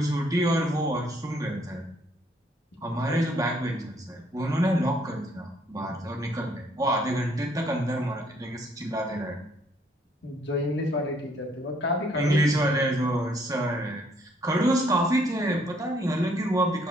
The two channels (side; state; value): both; normal; correlation 0.66